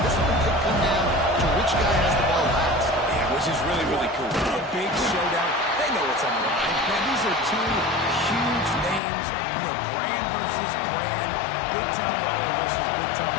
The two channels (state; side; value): drops out; right; at 9.0 s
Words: This one could come down to which guy has the ball last. Yeah, which is really, really cool. A big showdown. They know what's on the line. Man, these are two huge names. You know, brand versus brand. Big-time baller versus big-time